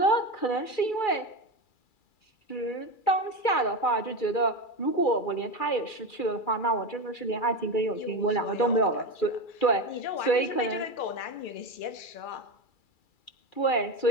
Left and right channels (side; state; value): right; late; 2.3 ms